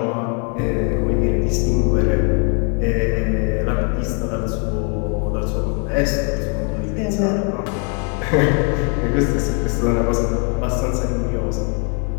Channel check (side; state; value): right; quieter; 38.5 dB